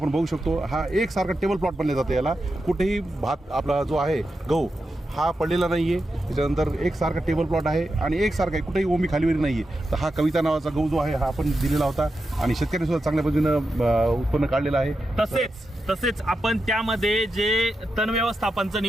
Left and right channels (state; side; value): normal; both; correlation 0.88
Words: बघू शकतो हा एकसारखा टेबल प्लॉट बनले जातं. याला कुठेही भात आपला जो आहे गहू हा पडलेला नाही आहे. त्याच्यानंतर एकसारखा टेबल प्लॉट आहे आणि एकसारखा आहे, कुठेही ओमी खालीवरी नाही आहे. तर हा कविता नावाचा गहू जो आहे हा आपण दिलेला होता आणि शेतकऱ्यांनी सुद्धा चांगल्या पद्धतीनं उत्पन्न काढलेलं आहे. तसेच आपण त्यामध्ये जे तण व्यवस्थापनचं